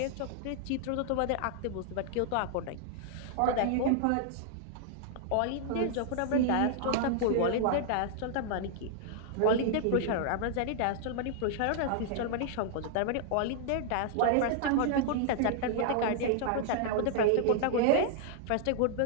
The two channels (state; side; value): different; both; correlation 0.00